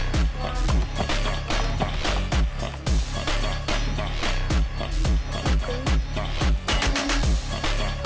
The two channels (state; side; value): identical; both; correlation 1.00